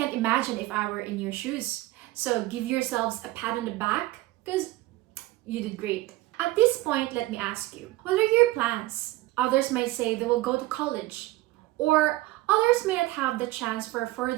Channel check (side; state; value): left; quieter; 18.4 dB